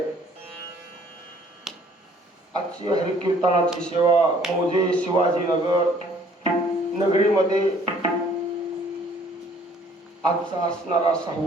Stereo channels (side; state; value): both; normal; correlation 0.58